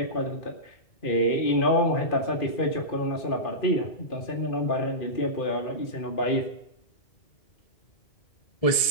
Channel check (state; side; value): late; right; 1.7 ms